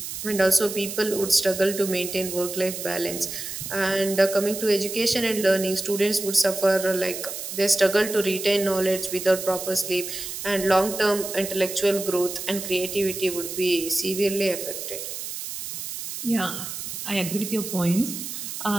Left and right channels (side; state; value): right; noise; hiss, 7 dB below the sound